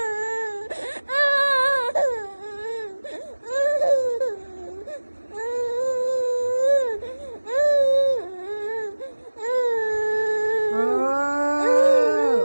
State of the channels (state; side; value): inverted; both; correlation -1.00